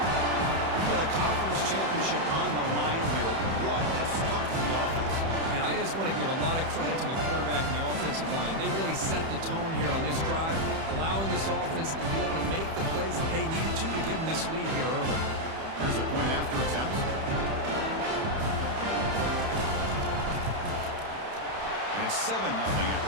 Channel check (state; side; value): late; left; 31 ms